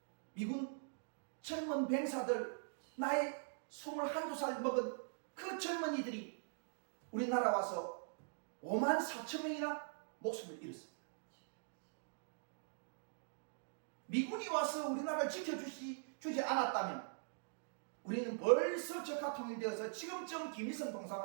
미군 젊은 병사들, 나이 21~22살 먹은 그 젊은이들이 우리나라 와서 5만 4천 명이나 목숨을 잃었습니다. 미군이 와서 우리나라를 지켜주지 않았다면 우리는 벌써 적화 통일되어서 지금쯤 김일성 동상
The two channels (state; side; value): silent; left; digital silence